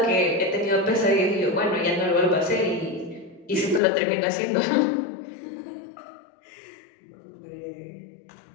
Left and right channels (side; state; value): right; drops out; at 3.8 s